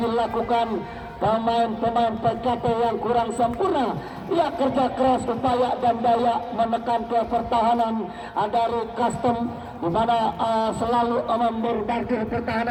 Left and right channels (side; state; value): both; identical; correlation 1.00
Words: pemain-pemain PKT yang kurang sempurna. Ya, kerja keras, upaya dan daya menekan ke pertahanan dari Custom, di mana selalu memborbardir